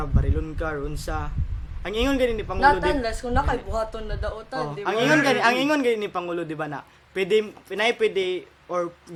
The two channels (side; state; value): both; identical; correlation 1.00